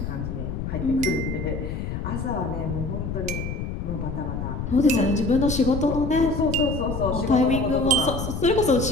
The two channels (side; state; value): left; noise; rumble, 4 dB below the sound